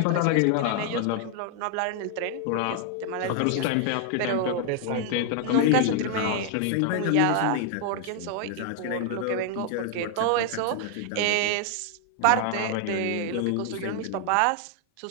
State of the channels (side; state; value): both; different; correlation 0.00